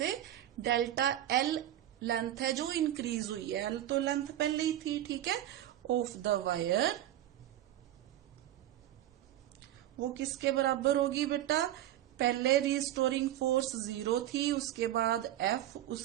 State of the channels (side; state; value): left; quieter; 12.9 dB